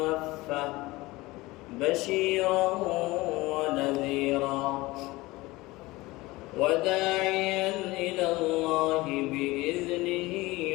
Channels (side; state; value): right; quieter; 20.6 dB